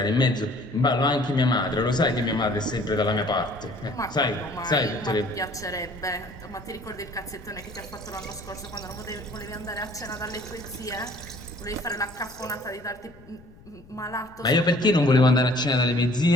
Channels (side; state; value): left; noise; rumble, 23 dB below the sound